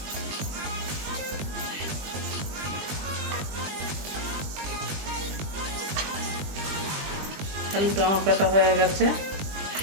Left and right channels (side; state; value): left; late; 20 ms